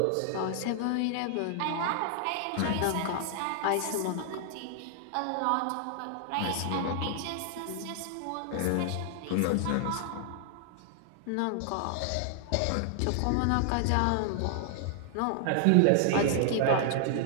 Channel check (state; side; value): different; both; correlation 0.00